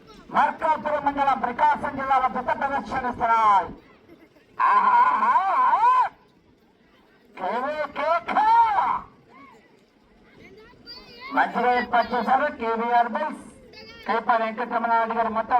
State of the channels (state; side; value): identical; both; correlation 1.00